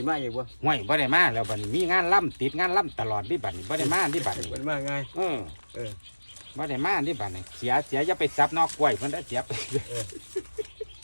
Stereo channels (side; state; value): both; inverted; correlation -1.00